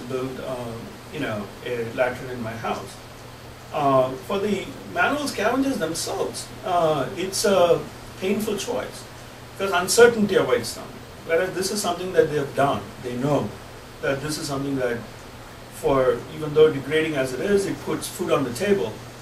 build a latrine in my house? For the manual scavengers themselves, it's a painful choice because uncertainty awaits them. Whereas this is something that they have done. They know that this is something that, even though degrading as it is, it puts food on the table,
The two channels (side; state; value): both; identical; correlation 1.00